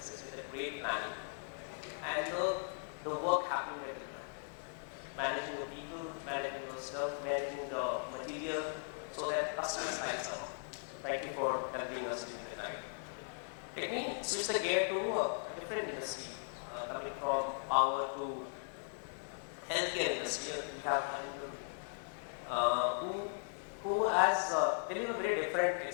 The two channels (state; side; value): silent; right; digital silence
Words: with a great planning? And the work happened with it. Managing the people, managing the stuff, managing the material, so that customers' lives are on. Thank you for helping us during the night. Let me switch the gear to a different industry, coming from power to healthcare industry. We have Arindam, who has very different